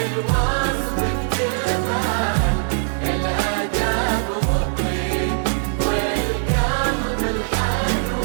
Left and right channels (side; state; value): left; silent; digital silence